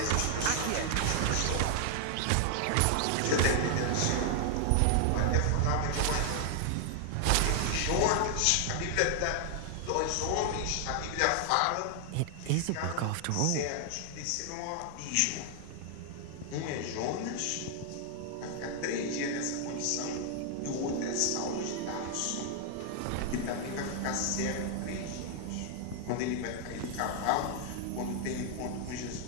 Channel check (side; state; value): both; different; correlation 0.00